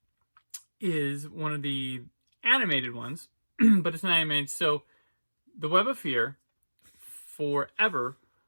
is one of the animated ones, but it's not animated. So, The Web of Fear, forever,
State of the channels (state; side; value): inverted; both; correlation -1.00